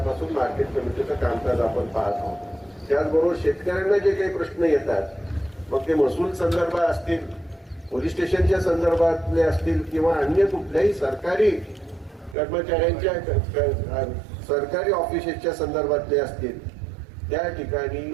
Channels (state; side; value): drops out; left; at 12.4 s